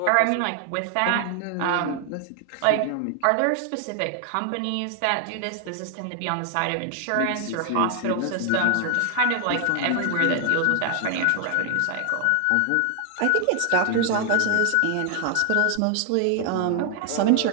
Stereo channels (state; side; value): different; both; correlation 0.00